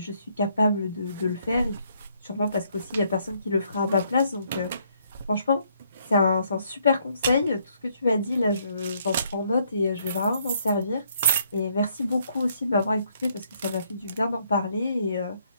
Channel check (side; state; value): both; inverted; correlation -0.70